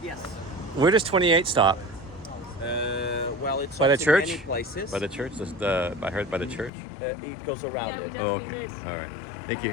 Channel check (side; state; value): right; drops out; at 6.7 s